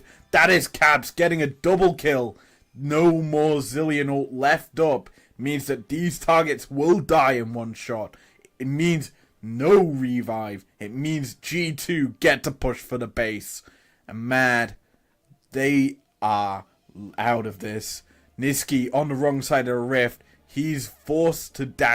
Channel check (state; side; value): identical; both; correlation 1.00